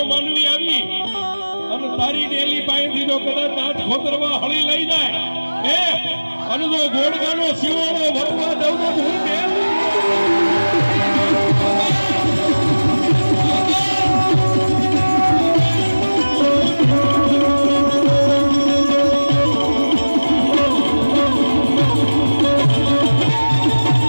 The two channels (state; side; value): inverted; both; correlation -1.00